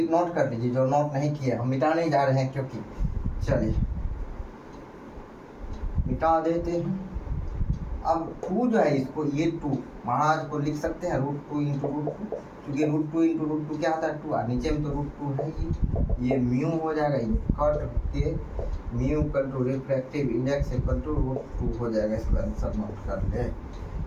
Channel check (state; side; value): identical; both; correlation 1.00